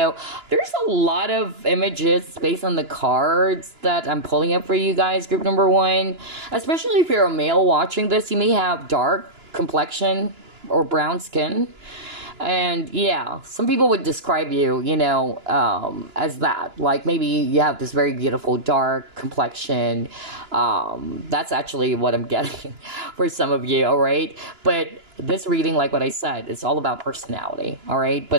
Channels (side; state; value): left; late; 2.9 ms